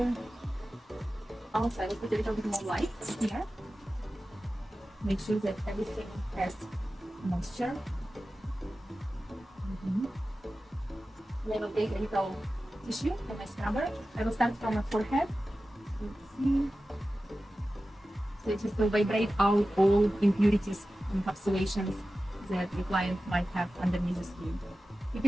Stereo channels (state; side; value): normal; both; correlation 0.95